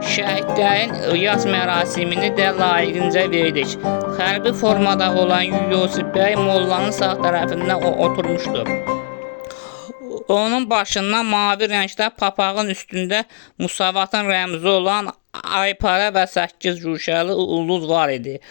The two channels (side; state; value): right; silent; digital silence